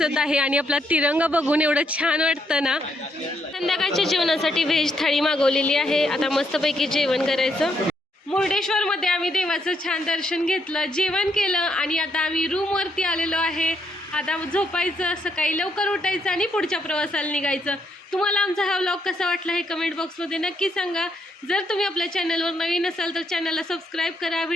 आहे आणि आपला तिरंगा बघून एवढं छान वाटतं ना. संध्याकाळच्या जेवणासाठी व्हेज थाळी मागवलेली आहे. आता मस्तपैकी जेवण करायचं. मुर्डेश्वरमध्ये आम्ही देवाचं छान दर्शन घेतलं, जेवण केलं आणि आता आम्ही रूमवरती आलेलो आहे. आता झोपायचं, सकाळी लवकर उठायचं आणि पुढच्या प्रवासाला निघायचं. तुम्हाला आमचा हा व्लॉग कसा वाटला हे कमेंट बॉक्समध्ये नक्की सांगा. जर तुम्ही आपल्या चॅनलवर नवीन असाल तर चॅनलला सबस्क्राईब करा,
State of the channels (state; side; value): normal; both; correlation 0.75